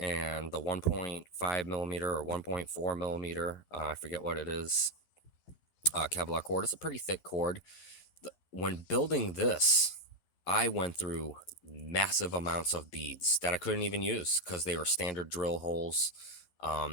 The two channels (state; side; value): late; right; 12 ms